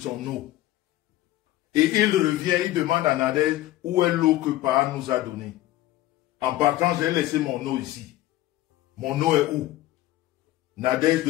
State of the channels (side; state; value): right; quieter; 15.7 dB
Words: eau. Et il revient, il demande à Nadège où est l'eau que Pa nous a donnée. En partant, j'ai laissé mon eau ici. Mon eau est où? Nadège